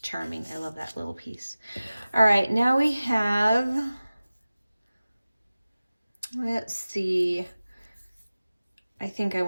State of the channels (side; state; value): both; inverted; correlation -0.97